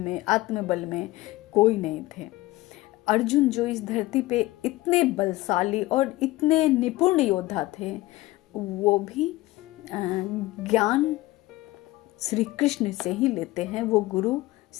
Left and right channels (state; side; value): quieter; right; 18.6 dB